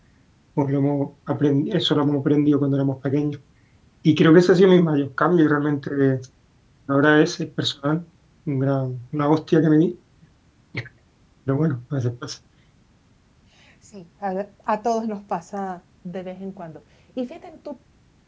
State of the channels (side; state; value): both; identical; correlation 1.00